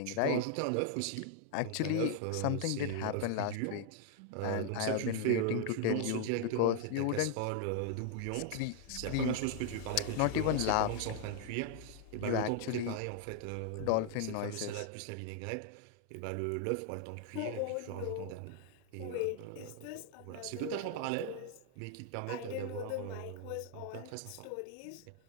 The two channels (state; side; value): different; both; correlation 0.00